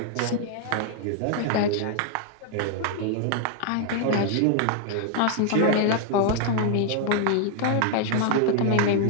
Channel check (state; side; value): different; both; correlation 0.00